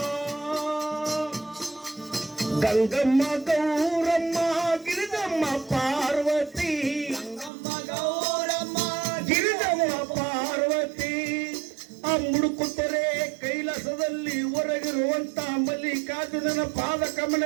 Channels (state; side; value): drops out; left; at 7.5 s